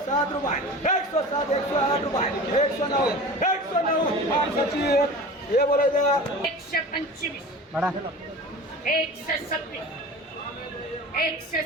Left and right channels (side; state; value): both; normal; correlation 0.36